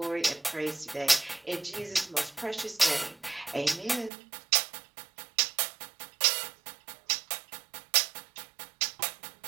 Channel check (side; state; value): left; drops out; at 4.1 s